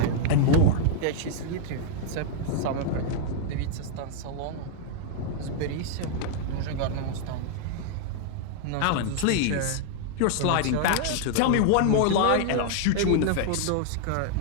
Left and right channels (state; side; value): different; both; correlation 0.00